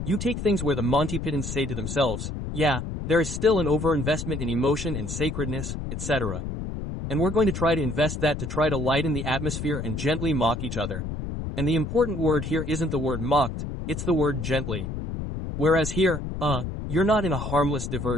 you take things where the Monty Pythons say to themselves, yeah, there is still an overinvestment in emotion and sacredness, etc. And we're going to try to invest that to try to lighten the atmosphere and gently mock each other. And the important word here isn't the word mocked, it's the word gently. Whereas here, you're not in a harmless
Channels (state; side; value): noise; left; rumble, 5 dB below the sound